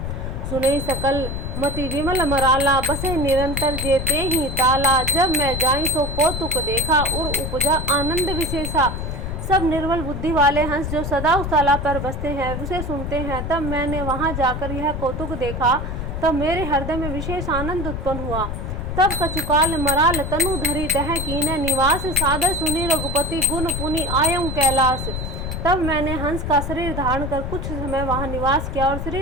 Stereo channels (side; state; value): left; noise; rumble, 4 dB below the sound